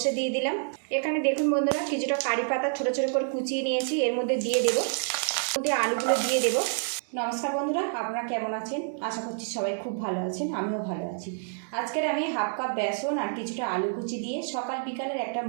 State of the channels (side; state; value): left; silent; digital silence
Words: দিয়ে দিলাম। এখানে দেখুন বন্ধুরা, কিছুটা কারি পাতা ছোট ছোট করে কুচিয়ে নিয়েছি, এর মধ্যে দিয়ে দেবো। মধ্যে আলুগুলো দিয়ে দেবো। নমস্কার বন্ধুরা, আপনারা কেমন আছেন? আশা করছি সবাই খুব ভালো আছেন, আমিও ভালো আছি। আজকের আমি হাফ কাপ বেসন আর কিছুটা আলু কুচি দিয়ে সকাল বিকালের একটা